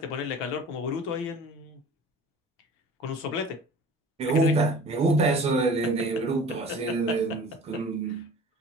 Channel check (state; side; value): normal; both; correlation 0.43